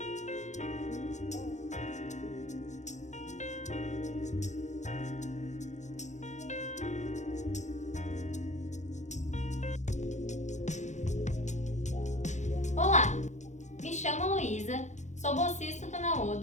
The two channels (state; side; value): late; right; 0.34 ms